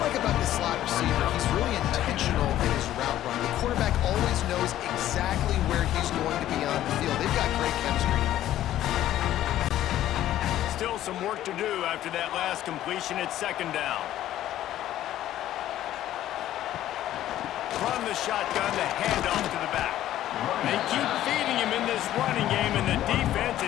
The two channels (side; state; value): right; quieter; 13.0 dB